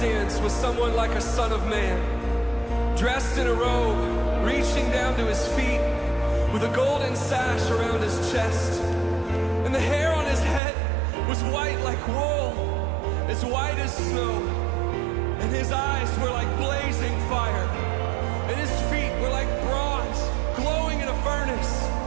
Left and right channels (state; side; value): drops out; left; at 10.6 s